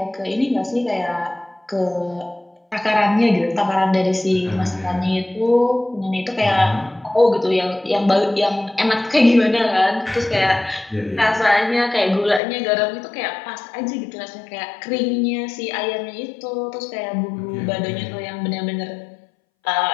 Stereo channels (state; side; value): drops out; right; at 12.4 s